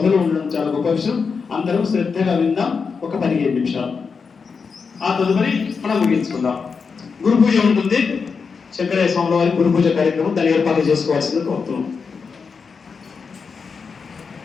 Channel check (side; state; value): right; quieter; 5.4 dB